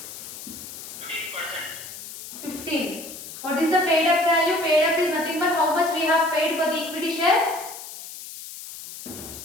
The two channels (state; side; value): noise; left; hiss, 12 dB below the sound